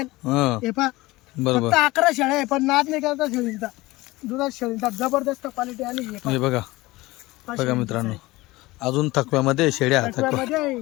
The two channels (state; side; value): quieter; right; 20.1 dB